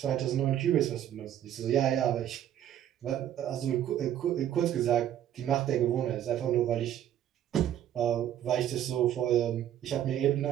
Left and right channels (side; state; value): left; quieter; 11.1 dB